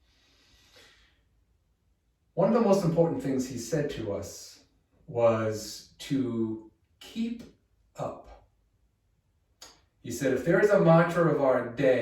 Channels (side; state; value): both; identical; correlation 1.00